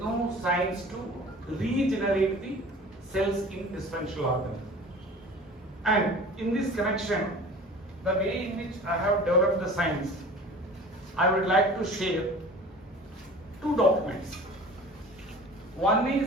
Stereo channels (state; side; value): normal; both; correlation 0.42